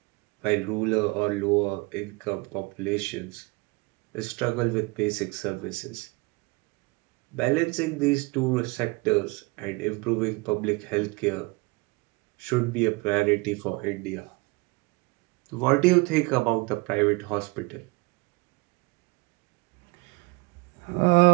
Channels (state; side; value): quieter; left; 25.8 dB